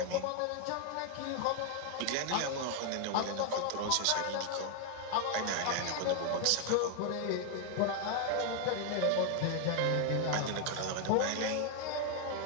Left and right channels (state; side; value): different; both; correlation 0.01